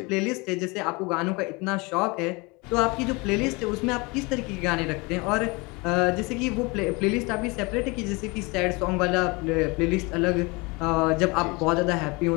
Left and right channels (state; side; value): quieter; right; 26.6 dB